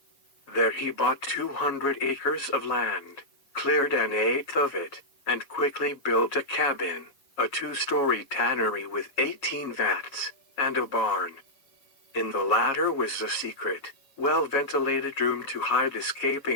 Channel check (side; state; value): right; late; 7.3 ms